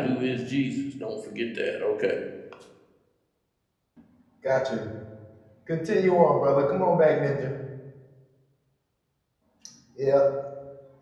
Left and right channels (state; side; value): identical; both; correlation 1.00